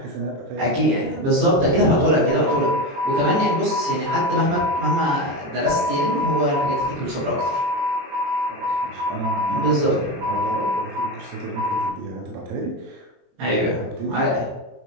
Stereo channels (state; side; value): late; left; 22 ms